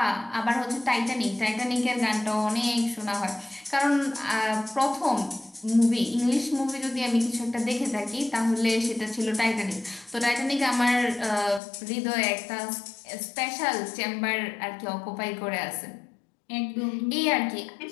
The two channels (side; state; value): right; drops out; at 11.6 s